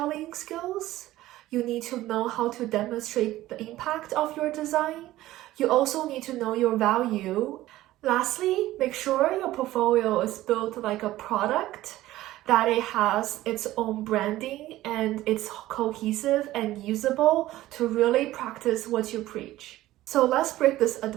skills. You need to know how to demonstrate the impact of your design. You also need to know your value. Lastly, make sure your portfolio is built like a product, that it has its own branding and it's cohesive and usable to really practice what you preach. So let's break this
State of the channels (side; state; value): left; quieter; 15.7 dB